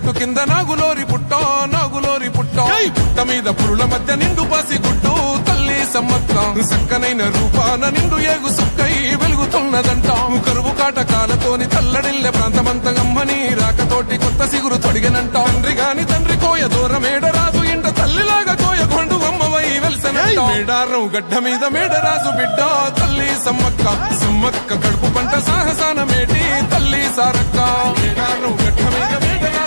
కింద నాగులోరి పుట్టం గుట్ట మీద పురుల మధ్య నిండు పాసి గుట్టు తల్లి సమ్మక్క చక్కనైన రూపాన నిండు ఏగు సుక్కై వెలుగుతున్నదంట కరువు కాటకాలతోని తల్లడిల్లె ప్రాంతమంత గమ్మని రాకతోటి కొత్త సిగురు తొడిగనంట తండ్రి కోయ దూరమేడరాజు ఇంట తల్లిలాగా కోయ కొండు అమ్మవై వెలిసనంట మేడారం గడ్డ మీద మేడరాజు బిడ్డ తల్లి సమ్మక్క కడుపు పంట సాహసాన మేటి తల్లి సారక్క మేడారం గడ్డ మీద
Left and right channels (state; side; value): inverted; both; correlation -1.00